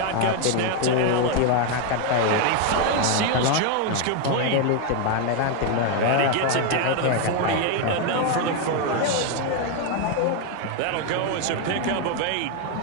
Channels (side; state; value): both; different; correlation 0.01